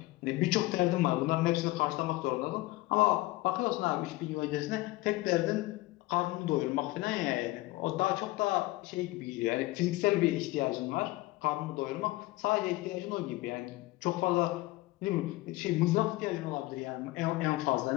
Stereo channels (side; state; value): right; quieter; 19.3 dB